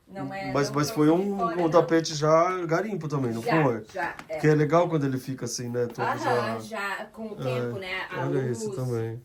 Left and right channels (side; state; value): both; identical; correlation 1.00